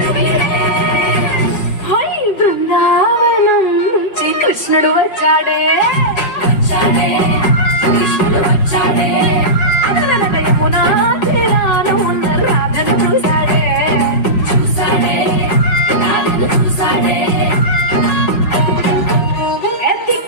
వీడే. హై బృందావనం నుంచి కృష్ణుడు వచ్చాడే వచ్చాడే కృష్ణుడు వచ్చాడే అదనక యమునా తీరాన ఉన్న రాధను చూశాడే చూసాడే రాధను చూసాడే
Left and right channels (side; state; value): right; late; 4.8 ms